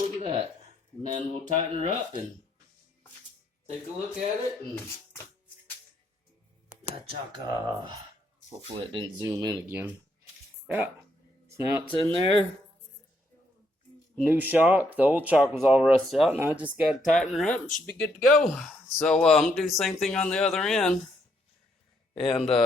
at that. And then we'll tighten her up and take a look at it and chaka. Hopefully it didn't zoom in again. Yeah, so now it's in there. New shock. The old shock was all rusted out, and I just got to tighten her up and should be good to go. So I'm going to do the same thing on the other end. And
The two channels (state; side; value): normal; both; correlation 0.74